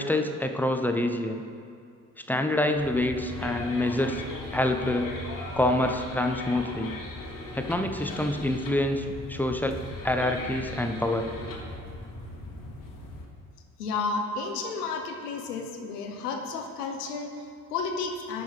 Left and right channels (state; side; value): normal; both; correlation 0.62